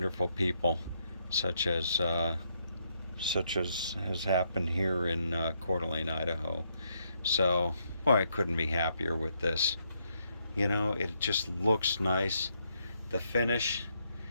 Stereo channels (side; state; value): both; inverted; correlation -0.76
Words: people, such as has happened here in Coeur d'Alene, Idaho. So, boy, I couldn't be happier with this. You know, it just looks nice. The finish,